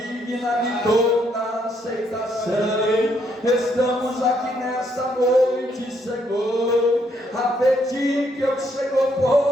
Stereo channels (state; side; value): normal; both; correlation 0.73